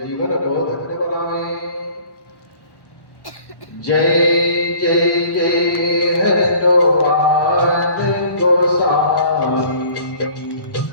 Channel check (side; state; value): right; late; 1.1 ms